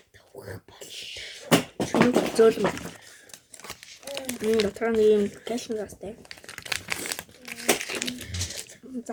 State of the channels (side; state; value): both; identical; correlation 1.00